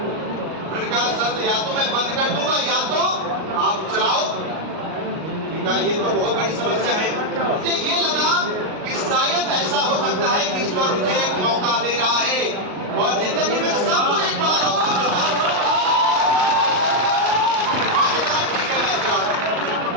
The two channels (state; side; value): late; left; 38 ms